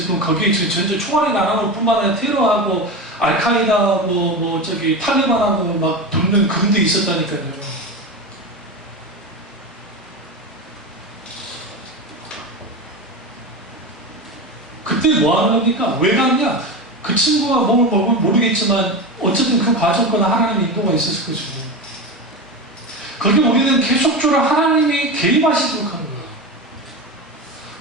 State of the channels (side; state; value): both; normal; correlation 0.22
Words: 거기에 지금 전체 총알이 날아올 뿐만 아니라 테러하고 알카이다 탈리반하고 막 붙는 그런 데 있었다니까요. 그때 뭐 하는 겁니까? 왜 갔냐? 그 친구가 뭘 모르겠지만 어쨌든 그 과정거나 하나님의 인도가 있었을 것이고, 거기 우리는 계속적으로 하나님이 개입하시도록 하는 거예요.